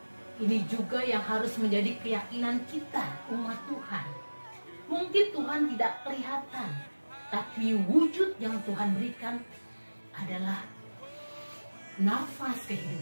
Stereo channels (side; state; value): both; inverted; correlation -1.00